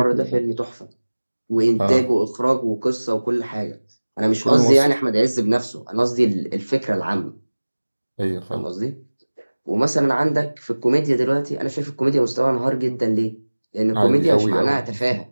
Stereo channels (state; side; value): inverted; both; correlation -1.00